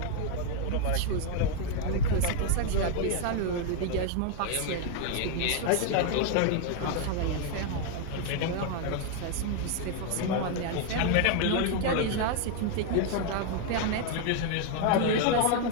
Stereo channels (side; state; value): both; different; correlation 0.00